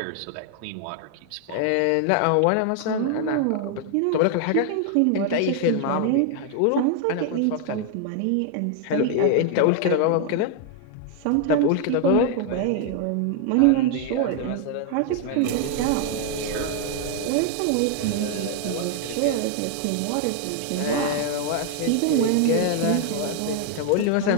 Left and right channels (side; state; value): both; different; correlation 0.00